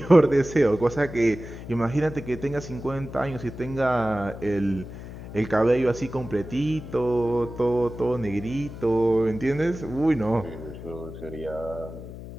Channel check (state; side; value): noise; left; hum, 12 dB below the sound